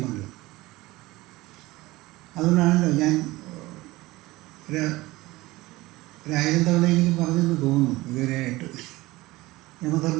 അതുകൊണ്ടാണല്ലോ ഞാൻ ഒരായിരം തവണ എനിക്ക് പറഞ്ഞെന്ന് തോന്നുന്നു ഇതുവരെയായിട്ട്.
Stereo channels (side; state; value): left; quieter; 19.6 dB